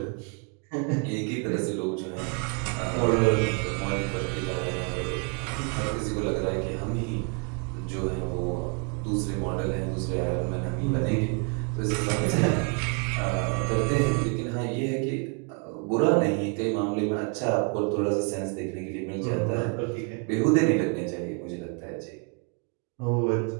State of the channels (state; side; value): quieter; left; 36.2 dB